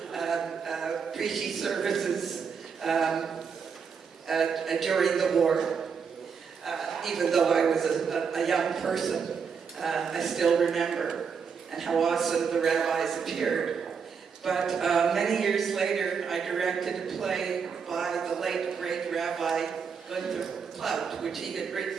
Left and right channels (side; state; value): left; quieter; 6.2 dB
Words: preachy services during the war. Even though I was a young person, I still remember and how awesome the rabbis appeared. But many years later, I directed a play by the late great Rabbi Gunther Plaut, which he had